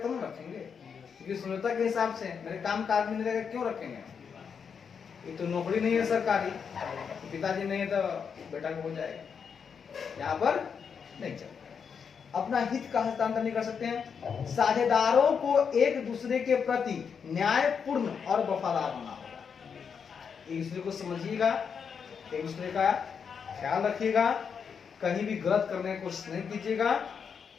हम रखेंगे, क्योंकि सुंदरता के हिसाब से मेरे काम का आदमी नहीं रहेगा, क्यों रखेंगे? ये तो नौकरी नहीं है सरकारी, पिताजी नहीं है तो बेटा को हो जाएगा, यहाँ पर नहीं चलेगा। अपना हित का हस्तांतरण नहीं कर सकते हैं। साझेदारों को एक दूसरे के प्रति न्यायपूर्ण और वफादार होना होगा। एक दूसरे को समझिएगा, एक दूसरे का ख्याल रखिएगा, कहीं भी गलत करने की कोशिश नहीं कीजिएगा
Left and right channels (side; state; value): right; quieter; 6.6 dB